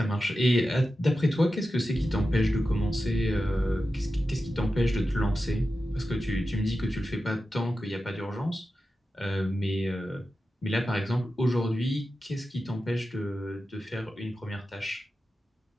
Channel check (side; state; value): both; normal; correlation 0.92